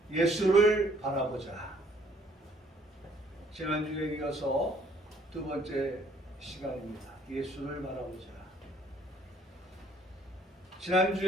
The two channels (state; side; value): normal; both; correlation 0.62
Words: 예수를 바라보자. 지난주에 이어서 두 번째 시간입니다. 예수를 바라보자.